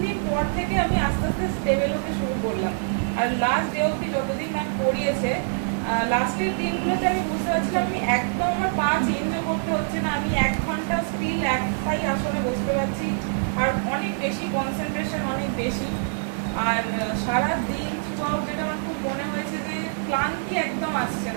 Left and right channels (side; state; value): left; silent; digital silence